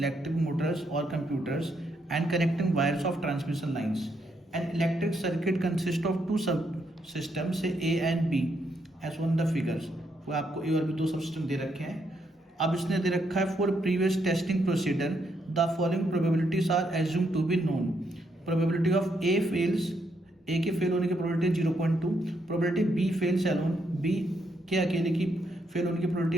motors or computers, and connecting wires of transmission lines. An electric circuit consists of two subsystems, say A and B, as on the figures. वो आपको A और B दो subsystem दे रखे हैं। अब इसने दे रखा है for previous testing procedure the following probabilities are assume to be known. Probability of A fails, A के फेल होने की probability 0.2, probability B fails alone, B के अकेले की फेल होने की प्रोबेबिलिटी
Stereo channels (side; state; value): both; normal; correlation 0.76